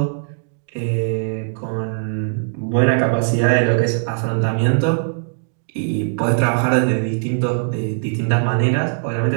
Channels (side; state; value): left; silent; digital silence